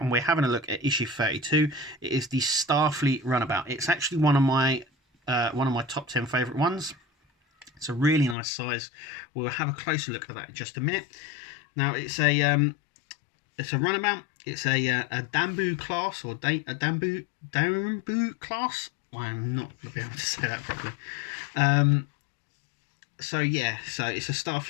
we're having a look at issue 32. It is the Starfleet Runabout. It's actually one of my top 10 favourite ones. It's a really nice size. We'll have a closer look at that in just a minute. Now it's a runabout. It's a Dambu class, or a Dambu class. I'm not going to be able to say that properly. So it's a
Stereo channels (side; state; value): right; drops out; at 8.3 s